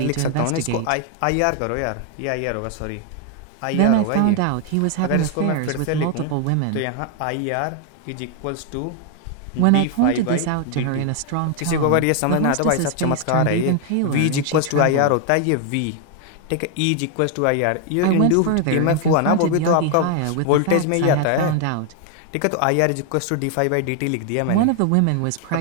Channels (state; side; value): different; both; correlation 0.00